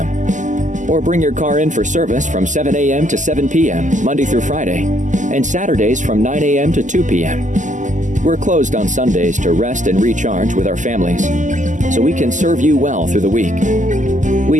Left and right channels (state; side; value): late; left; 0.37 ms